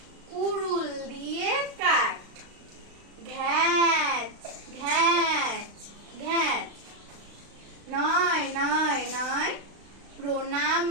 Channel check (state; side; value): late; left; 35 ms